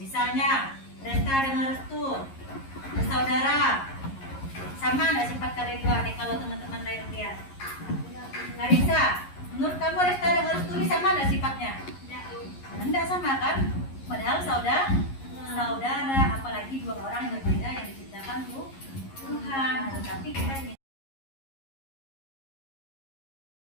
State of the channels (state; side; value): late; right; 11 ms